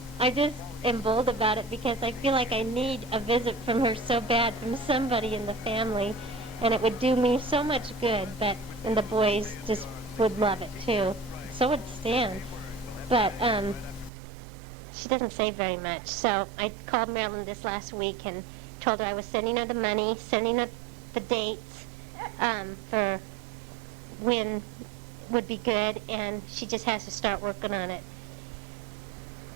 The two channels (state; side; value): drops out; left; at 14.1 s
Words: I just am bold about it because I feel like I need a visit from her so bad, from somebody in the family, and it would do me so much good. And the boys just would love it too. So would Stan. But she doesn't say very much. So I called Marilyn this last week and told her I was sending her the money, sending her the dates for when would be good, and she just has to start working on it.